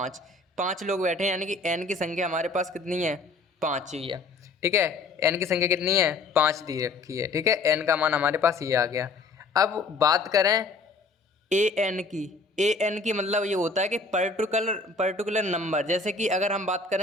5 लोग बैठे हैं, यानी कि N की संख्या हमारे पास कितनी है, 5 ही है, ठीक है। N की संख्या कितनी है, 5 दी रखी है, ठीक है। N का मान हमारे पास ये आ गया। अब बात करें AN की मतलब ये होता है कि पर्टिकुलर नंबर। जैसे कि अगर हम बात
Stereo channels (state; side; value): quieter; right; 3.7 dB